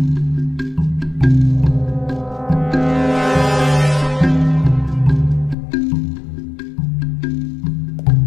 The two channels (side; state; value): right; drops out; at 5.6 s